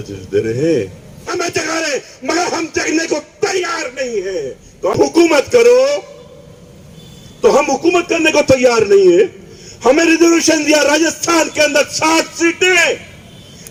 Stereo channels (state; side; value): identical; both; correlation 1.00